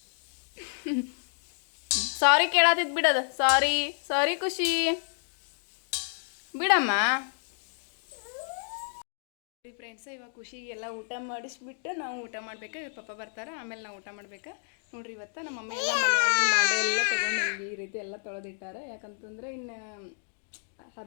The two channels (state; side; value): silent; right; digital silence